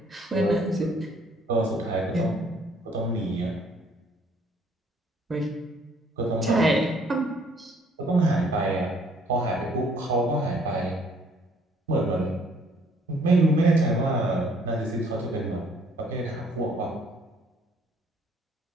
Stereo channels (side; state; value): both; normal; correlation 0.62